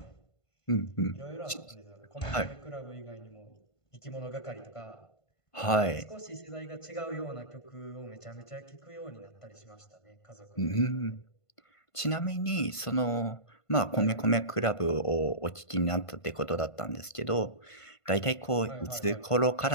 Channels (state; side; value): late; right; 1.5 ms